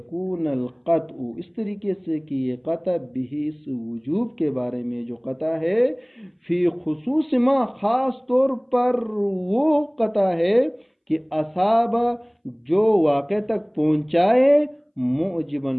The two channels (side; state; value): both; identical; correlation 1.00